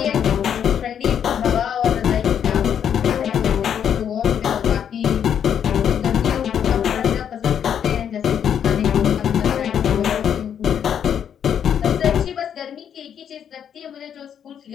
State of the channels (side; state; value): right; quieter; 8.7 dB